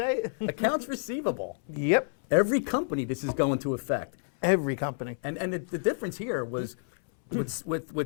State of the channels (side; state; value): right; silent; 59 dB below the other